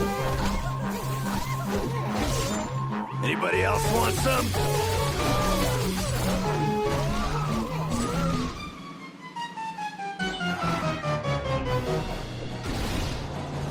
Anybody else want some?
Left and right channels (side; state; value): both; identical; correlation 1.00